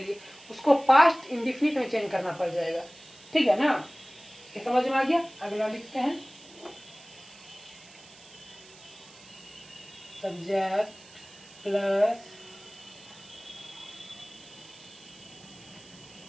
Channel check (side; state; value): right; noise; hiss, 21 dB below the sound